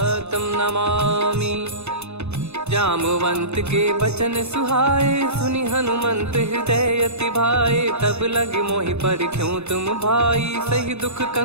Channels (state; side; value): late; left; 0.81 ms